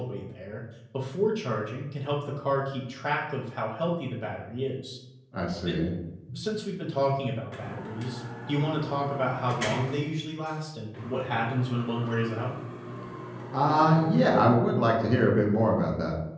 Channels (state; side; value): identical; both; correlation 1.00